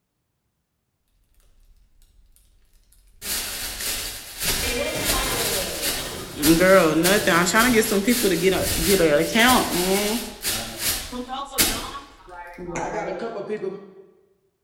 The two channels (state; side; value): identical; both; correlation 1.00